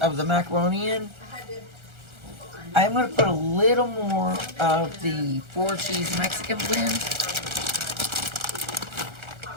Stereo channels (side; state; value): left; late; 1.4 ms